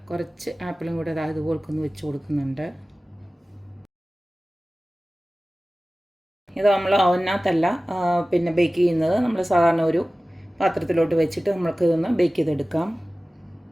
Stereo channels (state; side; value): normal; both; correlation 0.97